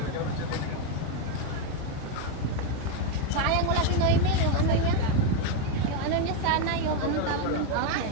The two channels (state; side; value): different; both; correlation 0.02